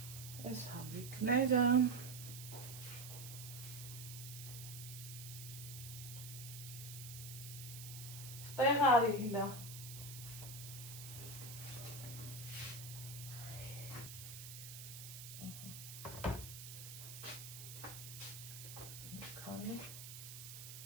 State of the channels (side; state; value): right; noise; hiss, 10 dB below the sound